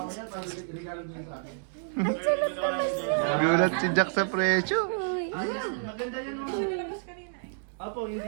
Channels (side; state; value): left; silent; digital silence